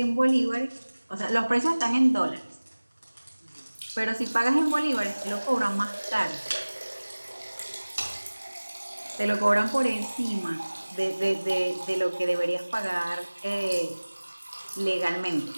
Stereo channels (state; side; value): inverted; both; correlation -1.00